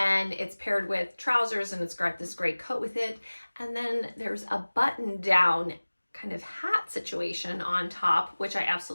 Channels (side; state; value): both; inverted; correlation -1.00